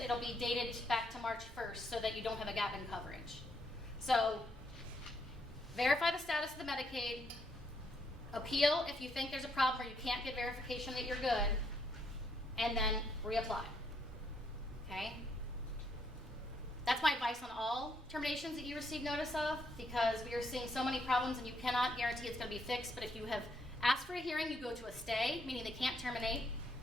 it'll be dated back to March 1st so that you don't have a gap in coverage. So verify the status of the Medicaid. Appeal if you think there's a problem or you can't get verification that you're good. And then reapply. Okay? That's my advice on all terminations that you receive notice of, because we are seeing so many problems and you cannot guarantee it's going to be fixed. But if you have asked for a hearing, you go to a stay, meaning they can't terminate.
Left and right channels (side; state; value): both; normal; correlation 0.74